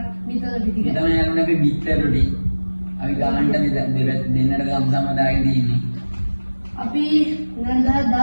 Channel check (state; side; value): inverted; both; correlation -1.00